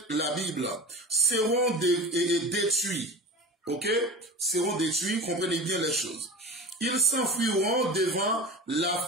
la Bible, seront détruits. Ok? Seront détruits, comprenez bien les choses. Ils s'enfuiront devant la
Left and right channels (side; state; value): both; normal; correlation 0.32